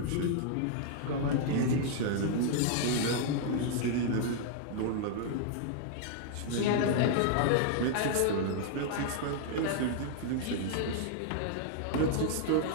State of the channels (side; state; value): both; different; correlation -0.01